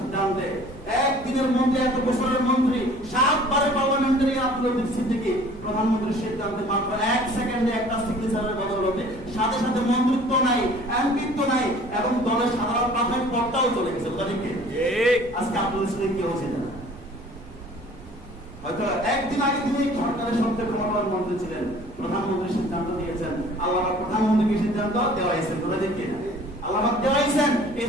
একদিনের মন্ত্রী, এক বছরের মন্ত্রী, 7 বারের পার্লামেন্টারি আব্দুল লতিফ সিদ্দিকী প্রধানমন্ত্রীর সিদ্ধান্তে মাত্র 1 সেকেন্ডে একটা সিগনেচারের বদৌলতে সাথে সাথে মন্ত্রিত্ব নাই, এমপিত্ব নাই, এবং দলের সাধারণ প্রাথমিক পদটাও চলে গেছে। আজকে আব্দুল সিদ্দিকী কেউ ছিলেন না, হয়তো একদিন আগে তিনি সরকারের সবচেয়ে ক্ষমতাবান মন্ত্রী ছিলেন, প্রধানমন্ত্রী সিদ্ধান্ত দিয়েছেন, আল্লাহ প্রধানমন্ত্রীকে সিদ্ধান্ত দেওয়া হয়েছে। তোরা দেখি না আল্লাহ দেওয়া হয়েছেন, এই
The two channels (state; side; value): noise; right; rumble, 20 dB below the sound